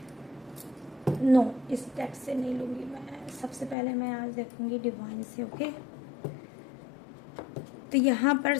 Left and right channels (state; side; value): drops out; right; at 3.8 s